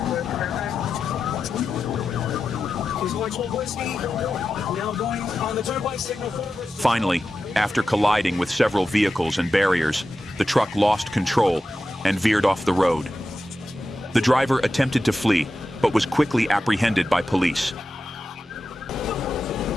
He's going 12 whiskey. Now going on the turnpike signal 4. Finally, after colliding with several vehicles and barriers, the truck lost control and veered off the road. The driver attempted to flee, but was quickly apprehended by police.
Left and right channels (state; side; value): normal; both; correlation 0.91